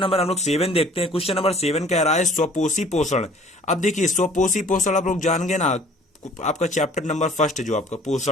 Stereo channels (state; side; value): normal; both; correlation 0.53